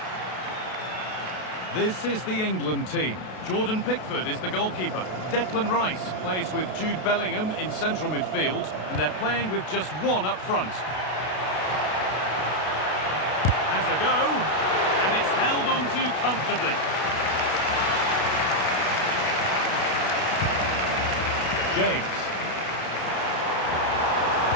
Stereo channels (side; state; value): right; late; 32 ms